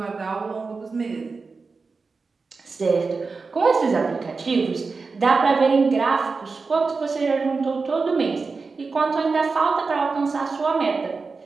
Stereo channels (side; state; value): left; quieter; 4.4 dB